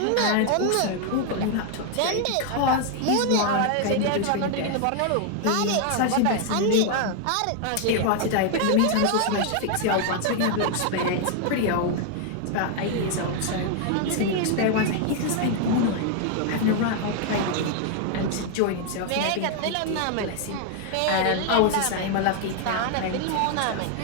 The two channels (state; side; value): different; both; correlation 0.00